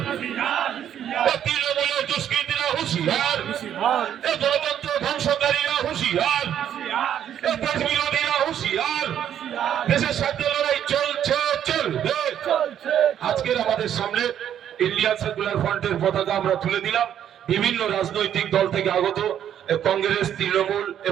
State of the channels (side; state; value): left; quieter; 10.0 dB